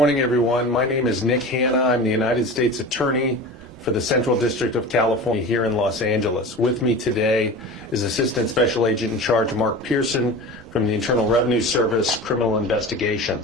everyone. My name is Nick Hanna. I'm the United States Attorney for the Central District of California here in Los Angeles. With me today is Assistant Special Agent in Charge Mark Pearson from the Internal Revenue Service Criminal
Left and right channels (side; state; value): both; normal; correlation 0.33